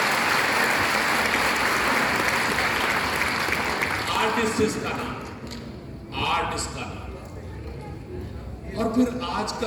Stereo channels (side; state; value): both; identical; correlation 1.00